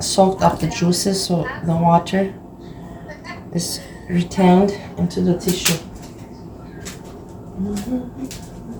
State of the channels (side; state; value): both; identical; correlation 1.00